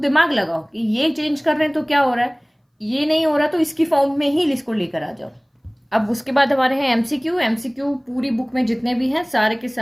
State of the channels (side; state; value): both; identical; correlation 1.00